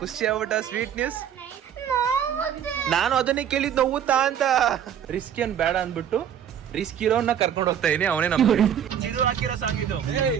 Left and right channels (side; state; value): left; quieter; 9.1 dB